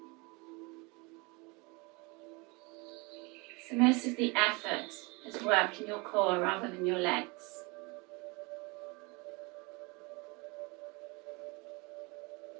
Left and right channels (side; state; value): left; quieter; 27.6 dB